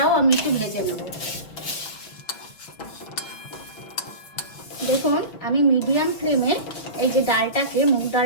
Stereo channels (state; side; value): late; right; 5.8 ms